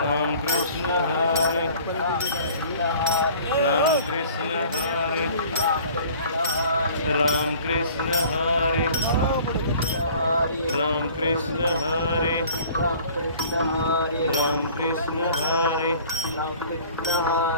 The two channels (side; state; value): both; inverted; correlation -0.49